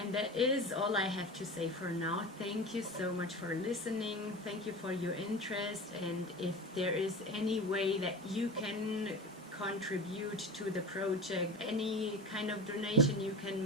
that is all I have to say for now. Thank you so much for listening. Thank you for your interest. And if there is any way that you can contribute to the project, any kind of donation you can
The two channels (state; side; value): normal; both; correlation 0.30